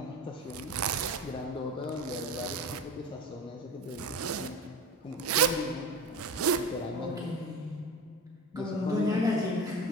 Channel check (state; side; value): normal; both; correlation 0.30